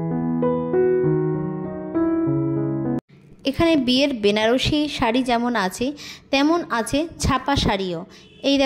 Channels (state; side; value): identical; both; correlation 1.00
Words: এখানে বিয়ের বেনারসি শাড়ি যেমন আছে তেমন আছে ছাপা শাড়িও। এই